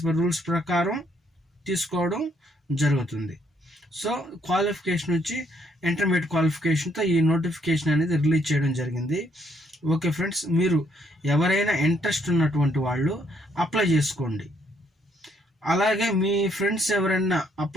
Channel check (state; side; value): normal; both; correlation 0.70